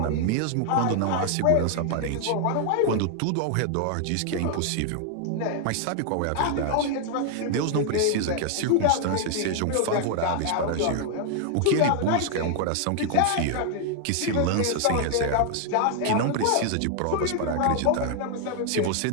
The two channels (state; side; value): different; both; correlation 0.00